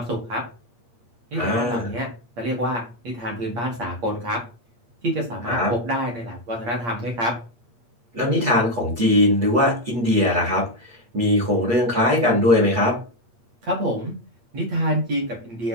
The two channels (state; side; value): late; left; 8.6 ms